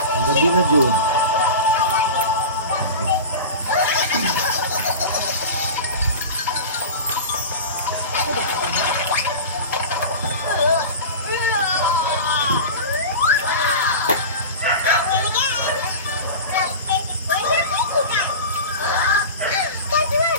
Ang gabi na, Jude.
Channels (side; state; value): both; inverted; correlation -0.30